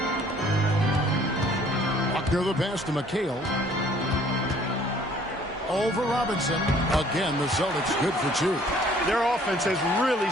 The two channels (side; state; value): both; normal; correlation 0.57